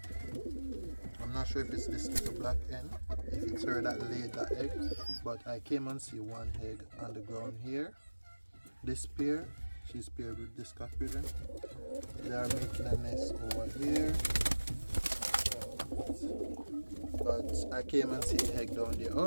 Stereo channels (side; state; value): both; inverted; correlation -1.00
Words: I'm not sure if it's this little black hen, if it's her that laid that egg, but I came and see 1 egg on the ground here. This pair, she's paired with this cock pigeon. They are making a nest over here, but I came and see the egg down there.